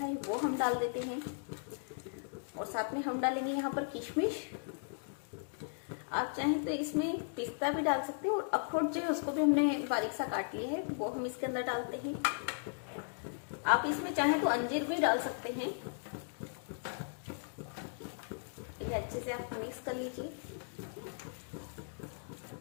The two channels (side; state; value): right; silent; digital silence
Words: है, वो हम डाल देते हैं और साथ में हम डालेंगे यहाँ पर किशमिश। आप चाहें तो इसमें पिस्ता भी डाल सकते हैं और अखरोट जो है उसको भी हमने बारीक सा काट लिया है, वो हम इसके अंदर डालते हैं। आप इसमें चाहें तो अंजीर भी डाल सकते हैं। इन्हें अच्छे से आप मिक्स कर लीजिए